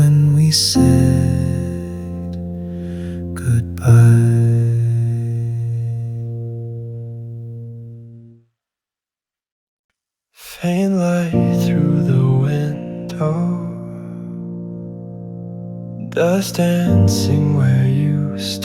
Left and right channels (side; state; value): both; identical; correlation 1.00